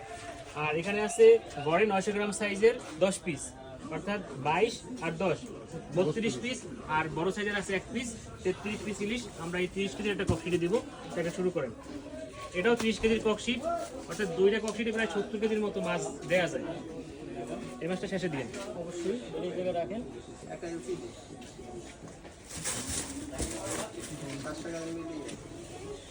আর এখানে আছে গড়ে 900 গ্রাম সাইজের 10 পিস, অর্থাৎ 22 আর 10 32 পিস। আর বড় সাইজের আছে 1 পিস, 33 পিস ইলিশ। আমরা এই 30 কেজির একটা ককশিটে দিব। এটা শুরু করেন। এটাও 30 কেজির ককশিট, অর্থাৎ দুইটা ককশিটে প্রায় 70 কেজির মতো মাছ দেয়া যায়। এই মাছটা শেষে দিন অবশ্যই, এই জায়গায় রাখেন।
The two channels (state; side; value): identical; both; correlation 1.00